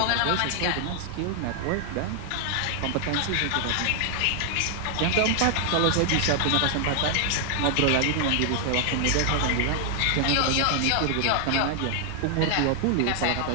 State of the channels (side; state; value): both; different; correlation 0.00